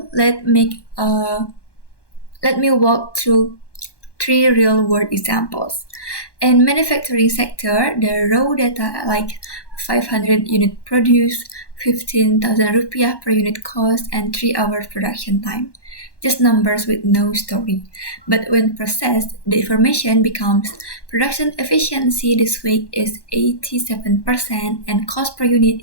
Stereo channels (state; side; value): late; right; 1.1 ms